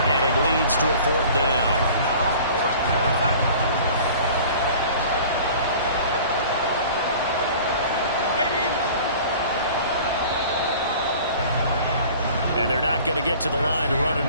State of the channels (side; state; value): both; inverted; correlation -0.45